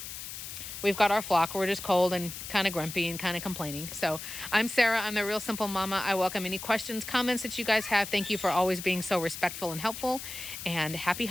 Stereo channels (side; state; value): left; noise; hiss, 9 dB below the sound